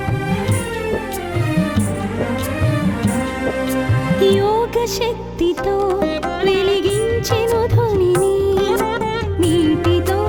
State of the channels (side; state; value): both; identical; correlation 1.00